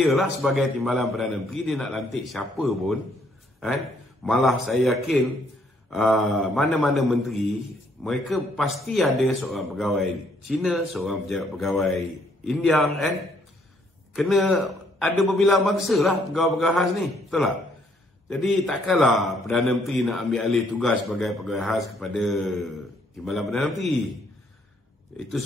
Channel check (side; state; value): both; normal; correlation 0.68